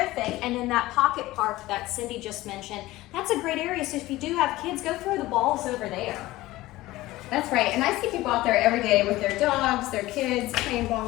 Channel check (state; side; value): quieter; right; 17.8 dB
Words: And in that pocket park that Cindy just mentioned, that's a great area. So if you do have kids, go throw the balls over there. That's right. And I see people out there every day with their dogs, their kids, playing